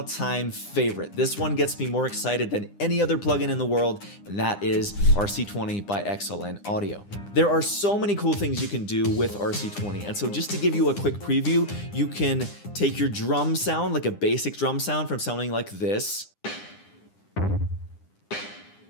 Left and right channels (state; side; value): late; right; 9.9 ms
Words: favorite. This one gets me more excited than any other plugin in the world, and that is RC-20 by XLN Audio. There are so many cool things you can do with RC-20, and so just to give you a quick preview, you can take your drum sound, like a basic drum sound from sounding like this,